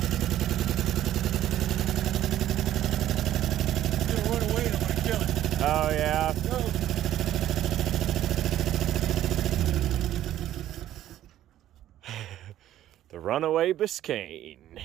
It's gonna run away and I'm gonna kill it. Oh yeah. The runaway Biscayne.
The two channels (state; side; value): quieter; left; 12.7 dB